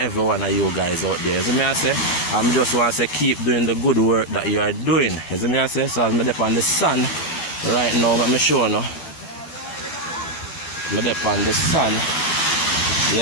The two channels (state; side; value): late; right; 12 ms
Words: one of you guys out there. As I say, I'm just want to say keep doing the good work that you are doing. As I say, so as I'm up on the sun right now, let me show you. I'm up on the sun,